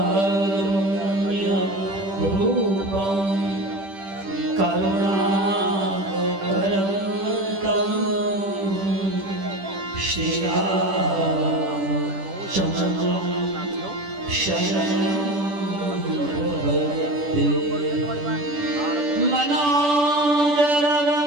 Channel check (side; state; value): left; late; 10 ms